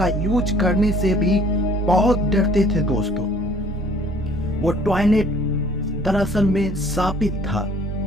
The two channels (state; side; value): normal; both; correlation 0.56